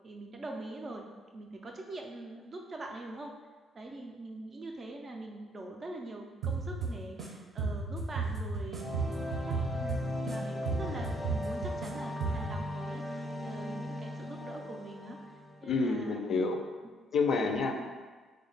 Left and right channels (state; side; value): normal; both; correlation 0.67